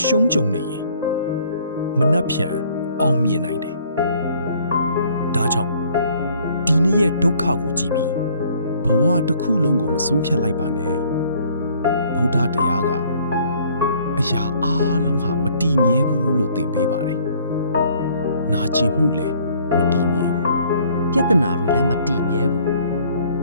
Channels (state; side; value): inverted; both; correlation -0.59